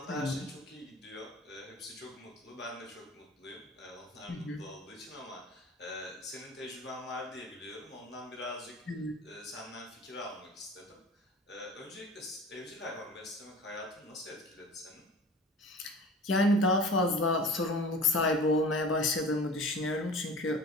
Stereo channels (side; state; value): both; normal; correlation 0.40